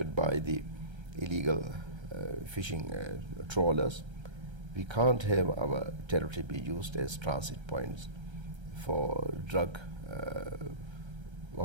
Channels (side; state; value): left; late; 1.3 ms